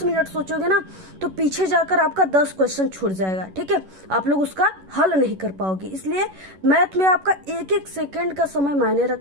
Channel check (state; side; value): late; left; 11 ms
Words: मिनट सोचोगे ना, तो पीछे जाकर आपका 10 क्वेश्चन छूट जाएगा, ठीक है। आप लोग उसका हल नहीं कर पाओगे। इसलिए मैथ में आपका एक एक सेकेंड का समय मायने